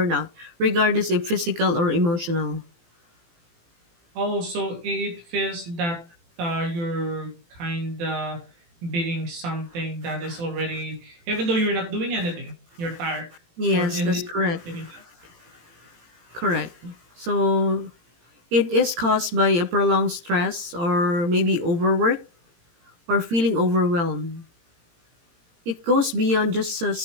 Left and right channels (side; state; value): left; late; 18 ms